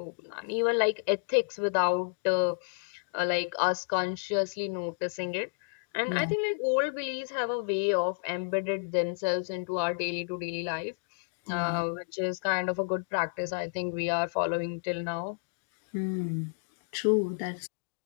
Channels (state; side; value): silent; right; digital silence